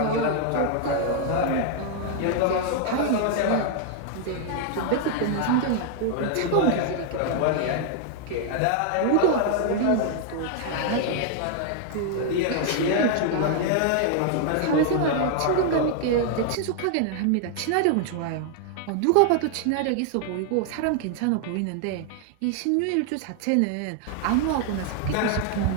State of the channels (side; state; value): both; different; correlation 0.00